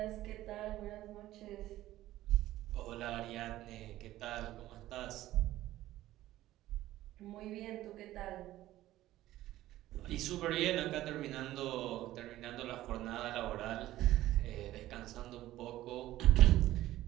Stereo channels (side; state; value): left; quieter; 15.0 dB